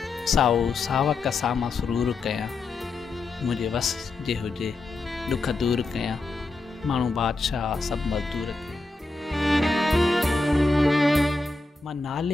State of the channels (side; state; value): right; quieter; 3.3 dB